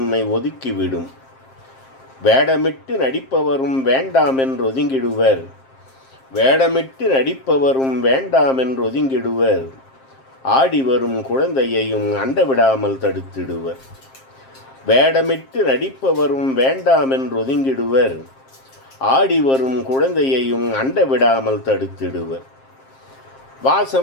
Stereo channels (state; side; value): late; right; 7.5 ms